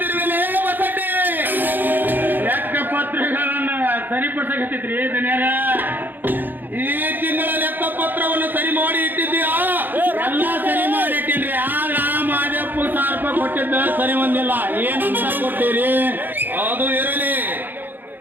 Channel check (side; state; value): left; late; 0.090 ms